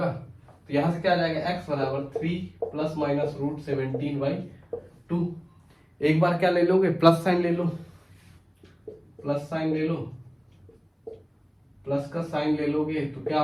तो यहां से क्या आ जाएगा, x बराबर 3 प्लस माइनस रूट 17/2। एक बार क्या ले लोगे, प्लस साइन ले लो, प्लस साइन ले लो, प्लस का साइन ले लोगे तो क्या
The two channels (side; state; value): both; identical; correlation 1.00